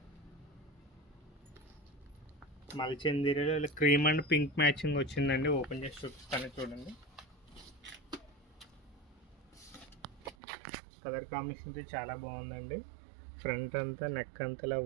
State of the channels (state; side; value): drops out; left; at 10.4 s